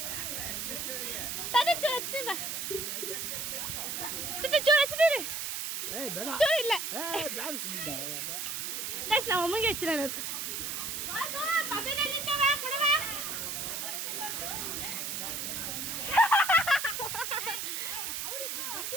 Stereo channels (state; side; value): noise; right; hiss, 3 dB below the sound